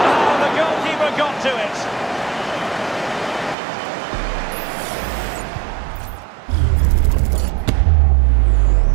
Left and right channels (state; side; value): drops out; left; at 3.6 s